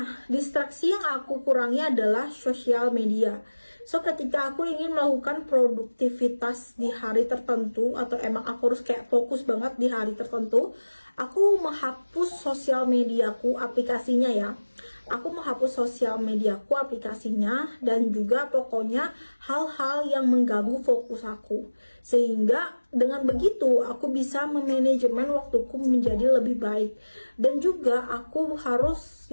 distraksi yang aku kurangi adalah sosial media. So, ketika aku ingin melakukan produktivitas di hari tertentu, atau emang aku harus kayak fokus banget di hari tertentu, aku menghapus sosial mediaku, aplikasinya ya. Aku menghapus sosial mediaku, aplikasinya, dan juga pokoknya hal-hal yang mengganggu fokus aku. Sehingga dengan begitu aku bisa memanajemen waktuku menjadi lebih baik. Dan juga aku harus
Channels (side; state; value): both; inverted; correlation -1.00